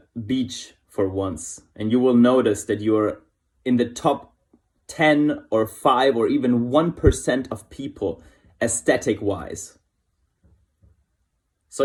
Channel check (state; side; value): identical; both; correlation 1.00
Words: beach for once, and you will notice that you're in the top 10 or 5 or even 1% of people aesthetic-wise. So